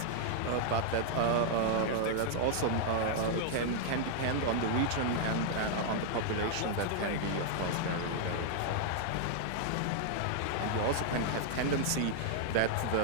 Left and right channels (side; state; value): both; different; correlation -0.01